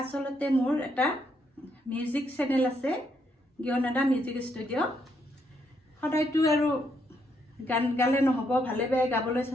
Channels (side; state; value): both; normal; correlation 0.76